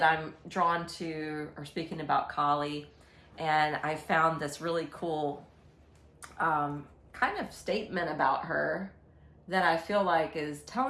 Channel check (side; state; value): both; identical; correlation 1.00